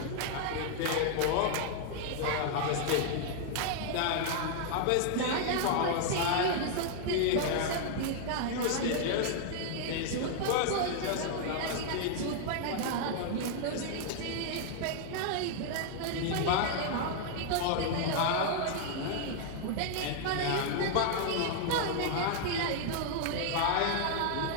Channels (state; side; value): different; both; correlation 0.00